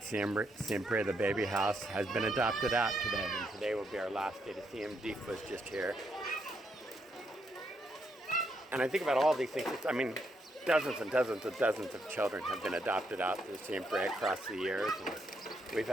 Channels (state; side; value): normal; both; correlation 0.77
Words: Siempre, the baby house, has been adopted out today, and today will be our last day to see him. Deef was just here. And I think about all these things. Dozens and dozens and dozens of children have been adopted out to Siempre across the years. And we've